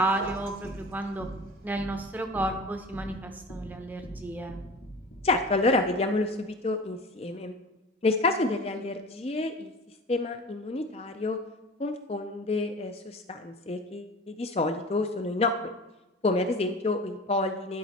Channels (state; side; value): normal; both; correlation 0.38